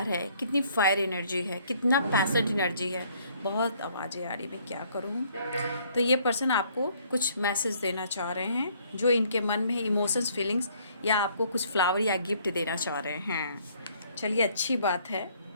है, कितनी फायर एनर्जी है, कितना पैसेंट एनर्जी है। बहुत आवाज़ें आ रही, मैं क्या करूँ। तो ये पर्सन आपको कुछ मैसेज देना चाह रहे हैं, जो इनके मन में इमोशंस, फीलिंग्स, या आपको कुछ फ्लावर या गिफ्ट देना चाह रहे हैं। चलिए, अच्छी बात है।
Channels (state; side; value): inverted; both; correlation -0.62